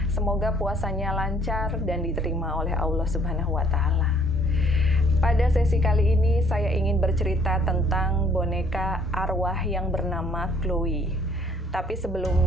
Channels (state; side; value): normal; both; correlation 0.61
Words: Semoga puasanya lancar dan diterima oleh Allah Subhanahu wa Ta'ala. Pada sesi kali ini saya ingin bercerita tentang boneka arwah yang bernama Chloe. Tapi